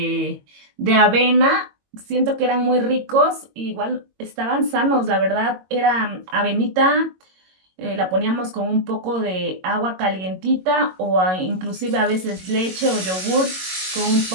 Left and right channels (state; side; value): late; left; 22 ms